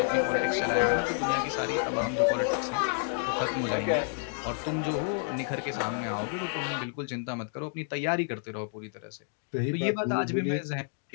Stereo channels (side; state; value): right; silent; 58 dB below the other